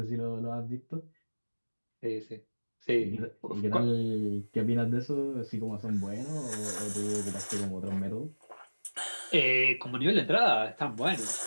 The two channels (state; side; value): inverted; both; correlation -1.00